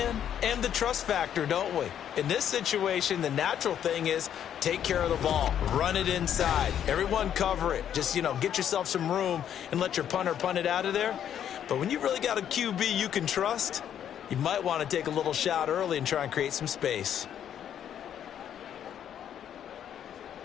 and the trust factor, don't we? In this situation, the natural thing is take care of the ball, run it inside. Everyone cover it. Just, get yourself some room and let your punter punt it out of there. But when you really got a QB you can trust, you might want to take a little shot early and try and create some space.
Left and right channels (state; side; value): quieter; right; 9.7 dB